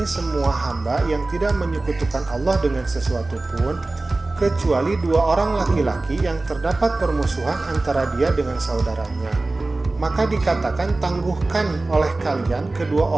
semua hamba yang tidak menyekutukan Allah dengan sesuatu pun, kecuali 2 orang laki-laki yang terdapat permusuhan antara dia dengan saudaranya. Maka dikatakan, tangguhkan oleh kalian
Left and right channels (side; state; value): left; quieter; 3.1 dB